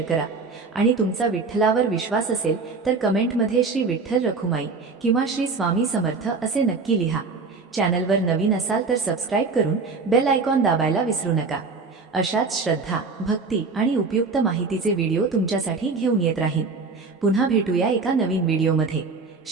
करा. आणि तुमचा विठ्ठलावर विश्वास असेल तर कमेंटमध्ये श्री विठ्ठल रखुमाई किंवा श्री स्वामी समर्थ असे नक्की लिहा. चॅनलवर नवीन असाल तर सबस्क्राईब करून बेल आयकॉन दाबायला विसरू नका. अशाच श्रद्धा, भक्ती आणि उपयुक्त माहितीचे व्हिडिओ तुमच्यासाठी घेऊन येत राहीन. पुन्हा भेटूया एका नवीन व्हिडिओमध्ये.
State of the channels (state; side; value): quieter; left; 4.3 dB